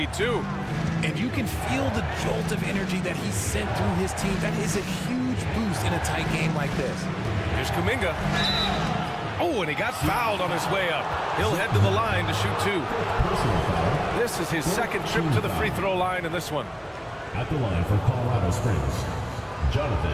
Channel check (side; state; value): both; identical; correlation 1.00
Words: too. And you can feel the jolt of energy that he sent through his team. That is a huge boost in a tight game like this. Here's Kuminga. Oh, and he got fouled on his way up. He'll head to the line to shoot 2. This is his second trip to the free throw line in this one. At the line for Colorado Springs,